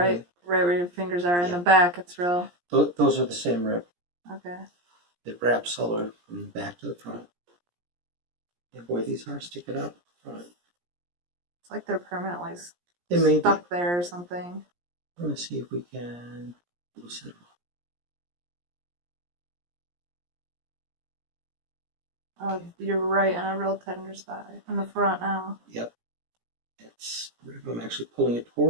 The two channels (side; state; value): left; late; 17 ms